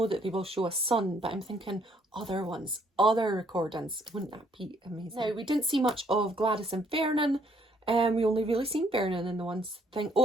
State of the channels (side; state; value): both; normal; correlation 0.67